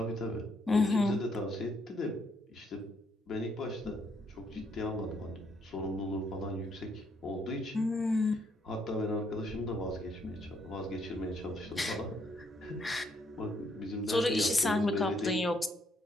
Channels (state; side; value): normal; both; correlation 0.72